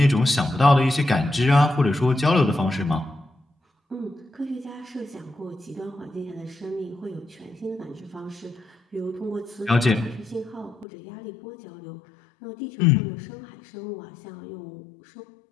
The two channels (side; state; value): right; drops out; at 10.9 s